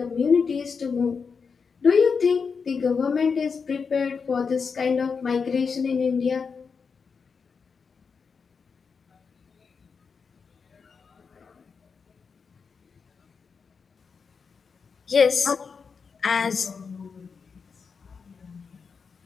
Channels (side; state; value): right; quieter; 5.5 dB